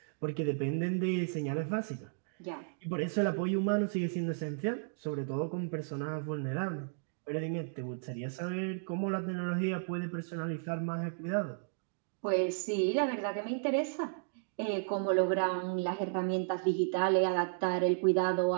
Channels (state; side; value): silent; left; digital silence